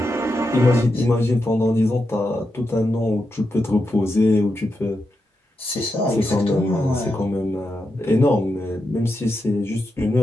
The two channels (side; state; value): both; normal; correlation 0.86